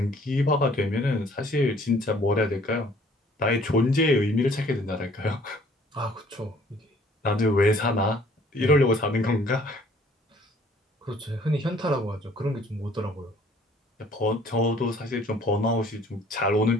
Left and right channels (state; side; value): normal; both; correlation 0.57